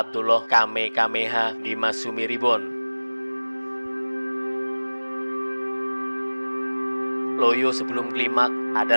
Kamehameha di Masumi Ribon. Loyo sebelum klimak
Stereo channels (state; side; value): inverted; both; correlation -1.00